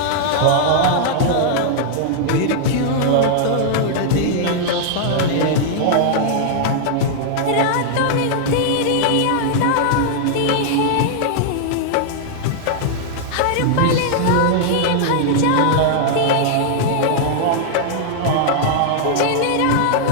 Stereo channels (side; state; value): both; different; correlation -0.01